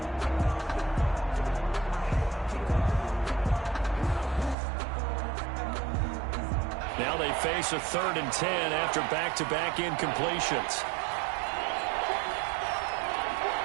Now they face a 3rd and 10 after back-to-back incompletions.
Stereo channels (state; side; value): drops out; left; at 4.5 s